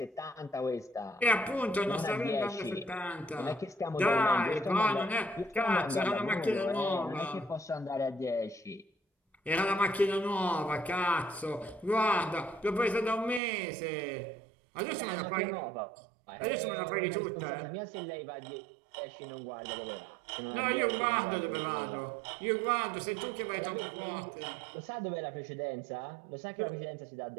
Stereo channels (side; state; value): left; drops out; at 13.4 s